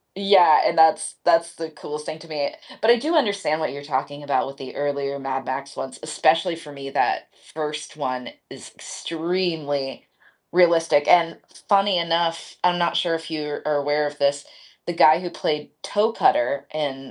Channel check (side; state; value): both; identical; correlation 1.00